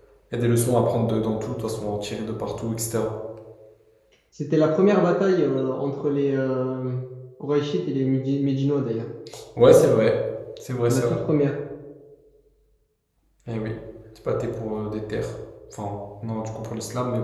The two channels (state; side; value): identical; both; correlation 1.00